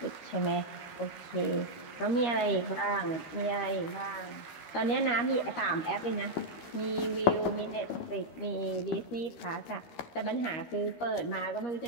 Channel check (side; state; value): right; late; 13 ms